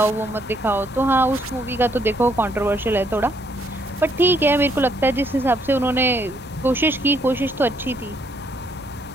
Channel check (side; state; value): both; normal; correlation 0.70